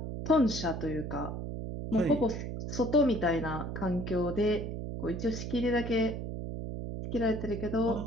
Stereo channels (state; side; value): noise; right; hum, 5 dB below the sound